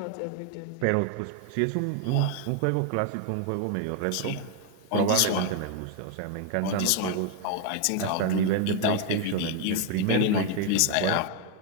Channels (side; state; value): both; different; correlation 0.01